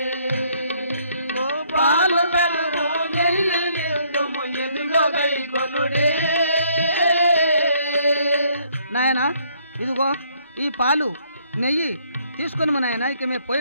పాలు పెరుగు నెయ్యి ఇత్తుము ఇదుగా గై కొనుడి నాయనా ఇదిగో ఈ పాలు నెయ్యి తీసుకొని మా నాయన ఇక మేము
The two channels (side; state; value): both; inverted; correlation -0.67